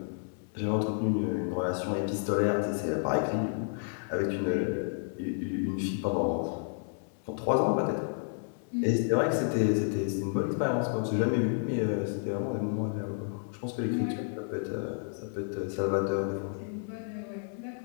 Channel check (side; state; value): right; silent; digital silence